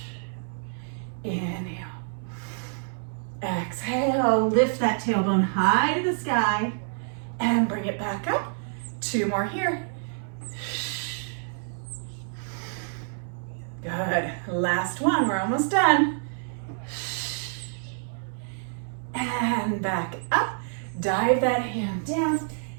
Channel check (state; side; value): silent; left; 60 dB below the other